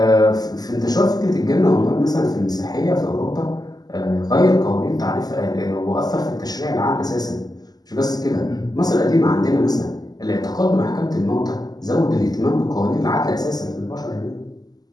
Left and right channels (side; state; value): right; late; 0.19 ms